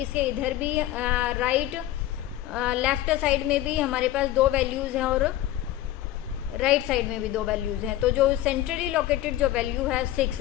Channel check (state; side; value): quieter; right; 13.8 dB